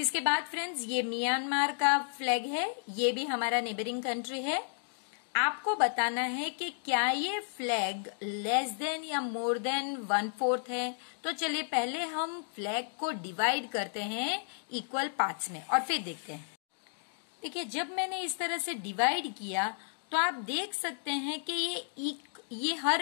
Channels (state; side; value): silent; right; digital silence